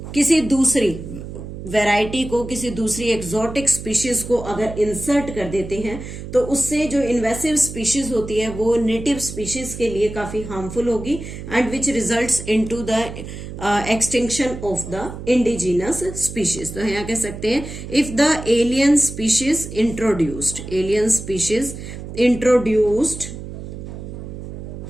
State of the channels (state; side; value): noise; right; hum, 10 dB below the sound